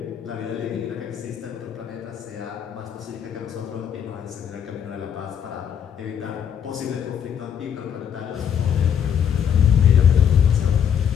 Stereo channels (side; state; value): right; quieter; 8.5 dB